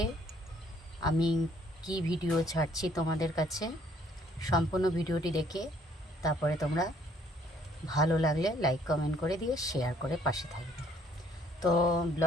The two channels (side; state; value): both; normal; correlation 0.62